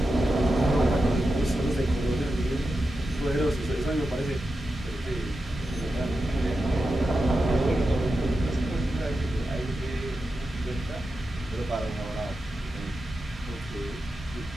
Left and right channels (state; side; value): normal; both; correlation 0.90